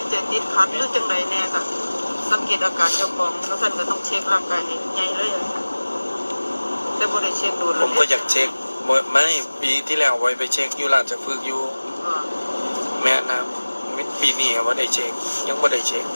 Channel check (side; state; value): both; inverted; correlation -1.00